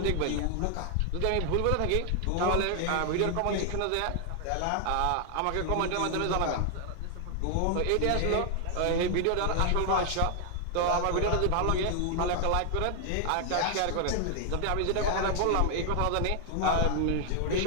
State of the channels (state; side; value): different; both; correlation 0.00